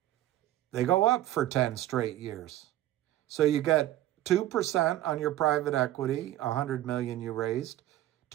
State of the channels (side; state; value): left; quieter; 14.3 dB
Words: they go up for 10 straight years. So you get 2% on your private equity, $100 million you raised,